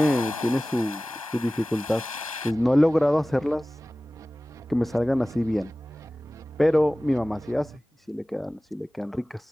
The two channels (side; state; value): both; normal; correlation 0.97